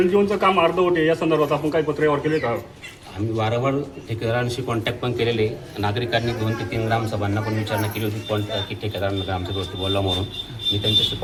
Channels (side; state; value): both; identical; correlation 1.00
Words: काम अर्धवट आहे, या संदर्भात आपण काही पत्रव्यवहार केले का? आम्ही वारंवार ठेकेदारांशी कॉन्टॅक्ट पण केलेले. नागरिकांनी 2 ते 3 ग्रामसभांना पण विचारणा केली होती की ठेकेदारांना ग्रामसभेवरती बोलला म्हणून. मी त्यांच्याशी